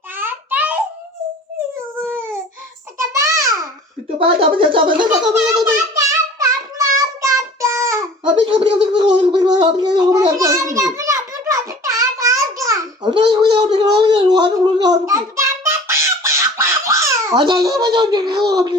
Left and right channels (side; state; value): both; normal; correlation 0.45